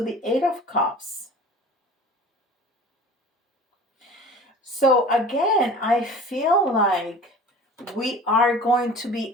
the Eight of Cups. So again, I feel like we are going to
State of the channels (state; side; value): normal; both; correlation 0.41